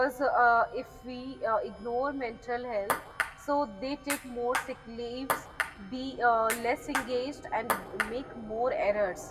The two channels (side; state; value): both; identical; correlation 1.00